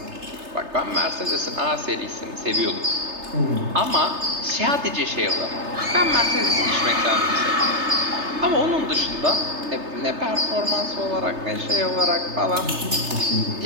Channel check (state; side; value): late; left; 3.3 ms